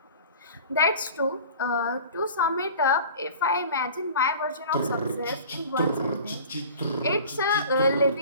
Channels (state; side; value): inverted; both; correlation -0.41